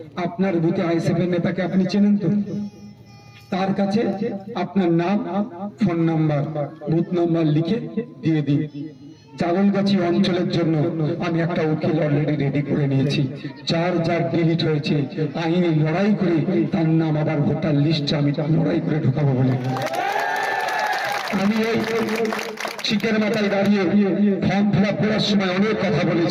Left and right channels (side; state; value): both; identical; correlation 1.00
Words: আপনার বুথে আইএসএফ এর নেতাকে আপনি চেনেন তো? তার কাছে আপনার নাম, ফোন নাম্বার, বুথ নাম্বার লিখে দিয়ে দিন। জাগলগাছি অঞ্চলের জন্য আমি একটা উকিল অলরেডি রেডি করে নিয়েছি। যার ডিলিট হয়েছে আইনি লড়াই করে তার নাম আবার ভোটার লিস্টে আমি লড়াই করে ঢোকাবো বলে আমি এই চিকের মাথায় দাঁড়িয়ে ফর্ম ফিল আপ করার সময় অনেক কথা